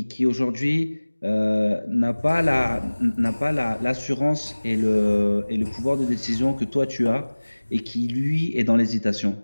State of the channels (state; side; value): inverted; both; correlation -1.00